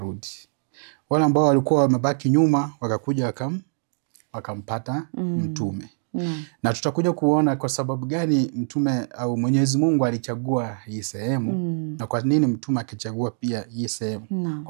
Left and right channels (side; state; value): left; silent; digital silence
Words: Wale ambao walikuwa wamebaki nyuma wakakuja wakampata mtume. Na tutakuja kuona kwa sababu gani mtume au Mwenyezi Mungu alichagua hii sehemu na kwa nini mtume akichagua pia hii sehemu